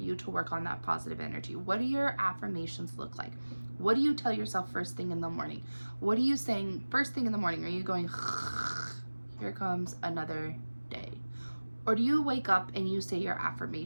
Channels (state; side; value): inverted; both; correlation -1.00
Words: to work on that positive energy. What do your affirmations look like? What do you tell yourself first thing in the morning? What are you saying first thing in the morning? Are you going, here comes another day? Or do you wake up and you say your